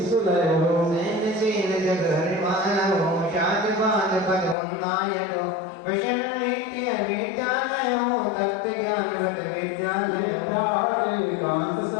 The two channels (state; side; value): drops out; right; at 4.5 s